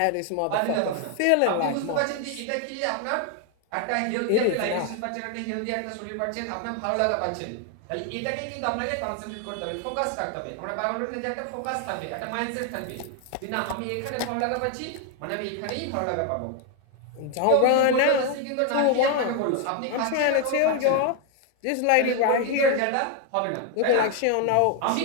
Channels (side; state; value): both; different; correlation 0.01